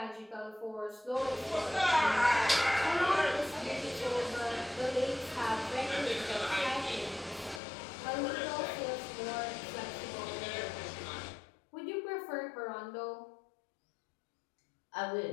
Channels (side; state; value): right; drops out; at 7.6 s